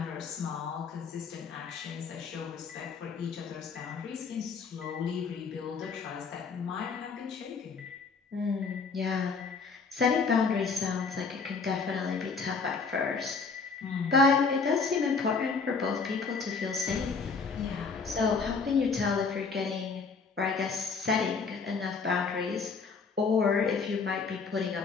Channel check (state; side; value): quieter; right; 4.9 dB